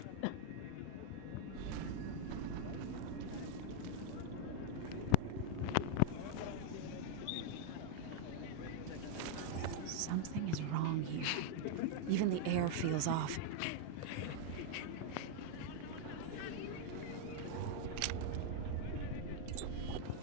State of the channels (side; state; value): both; different; correlation -0.01